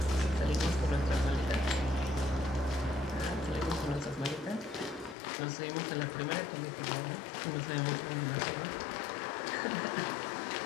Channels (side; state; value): right; drops out; at 5.2 s